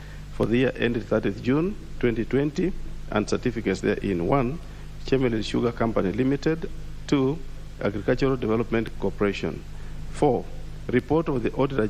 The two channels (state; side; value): identical; both; correlation 1.00